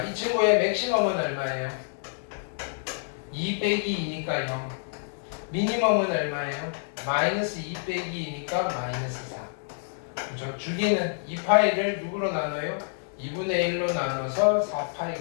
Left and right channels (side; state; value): right; silent; digital silence